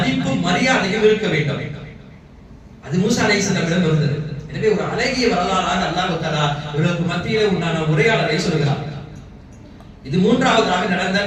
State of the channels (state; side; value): identical; both; correlation 1.00